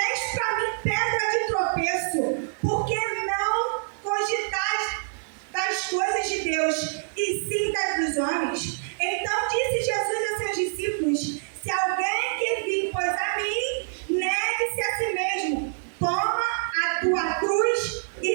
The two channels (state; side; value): silent; left; digital silence